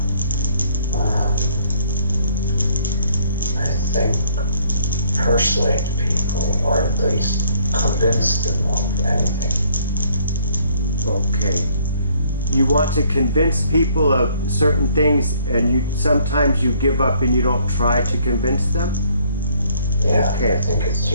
I think persuade people, or at least convince them of anything. Okay. You want to convince people of certain things, and sometimes you give up and you don't try to convince them? Yeah, Okay. I think it's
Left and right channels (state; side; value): inverted; both; correlation -0.63